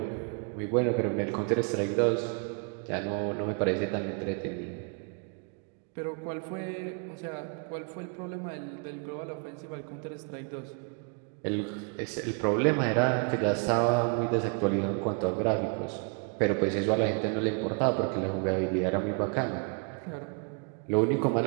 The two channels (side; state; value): left; quieter; 38.0 dB